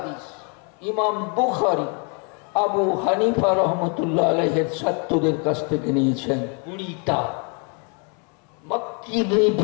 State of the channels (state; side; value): quieter; right; 36.5 dB